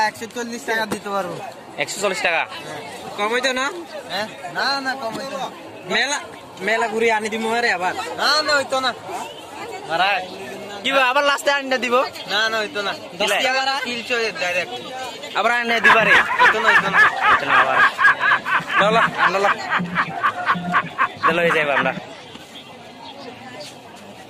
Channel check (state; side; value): identical; both; correlation 1.00